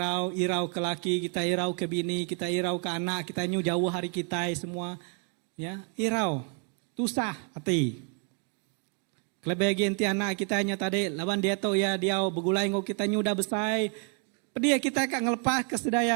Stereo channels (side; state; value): left; quieter; 39.4 dB